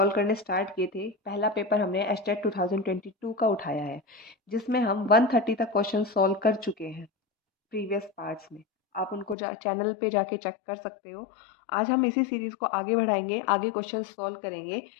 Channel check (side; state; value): right; drops out; at 9.3 s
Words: करने स्टार्ट किए थे। पहला पेपर हमने एचटेट 2022 का उठाया है, जिसमें हम 130 तक क्वेश्चन सॉल्व कर चुके हैं प्रीवियस पार्ट्स में। आप उनको चैनल पे जाके चेक कर सकते हो। आज हम इसी सीरीज़ को आगे बढ़ाएंगे, आगे क्वेश्चन सॉल्व करेंगे।